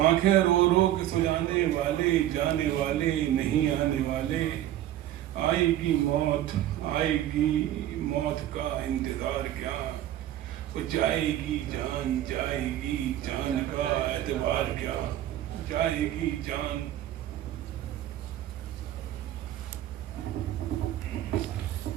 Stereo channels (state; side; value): quieter; left; 12.9 dB